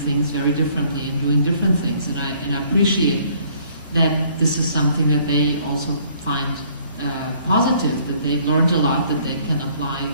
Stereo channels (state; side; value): inverted; both; correlation -0.61